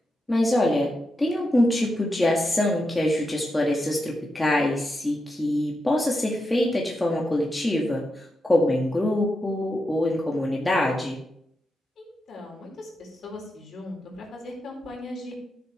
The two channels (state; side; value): normal; both; correlation 0.87